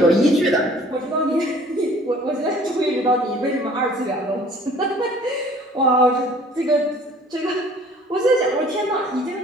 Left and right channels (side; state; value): both; normal; correlation 0.52